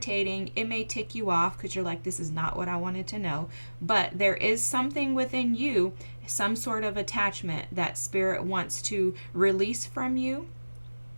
It may tick you off because you're like, this is not what I wanted to know. But there is something within you, some sort of attachment that Spirit wants to release from you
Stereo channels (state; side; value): inverted; both; correlation -1.00